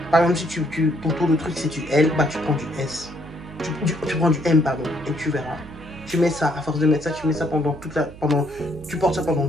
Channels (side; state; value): right; noise; hum, 18 dB below the sound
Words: Par exemple, si ton tour de truc c'est du L, bah tu prends du S. Tu prends du M, pardon. Et tu verras. Tu mets ça, à force de mettre ça, tu mets ça tu portes ça pendant